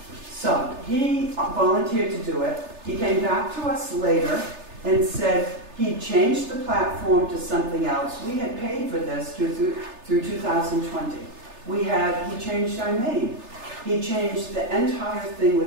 So he volunteered to do it. He came back to us later and said he changed the platform to something else. We had paid for this through 2020. He changed our name. He changed the entire thing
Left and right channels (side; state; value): left; late; 3.3 ms